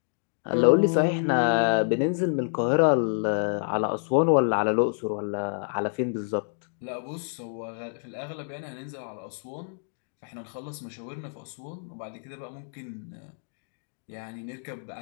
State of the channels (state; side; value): silent; right; digital silence